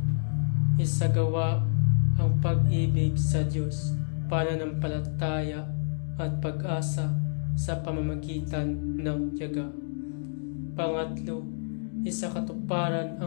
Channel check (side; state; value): right; silent; digital silence